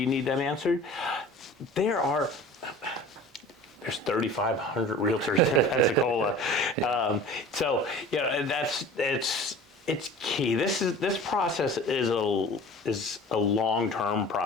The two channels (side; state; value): both; normal; correlation 0.42